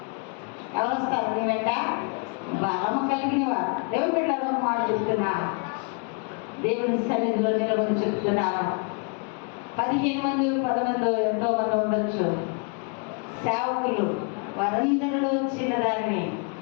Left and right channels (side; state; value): right; quieter; 36.7 dB